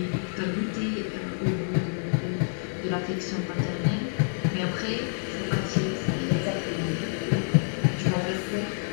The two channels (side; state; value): right; silent; digital silence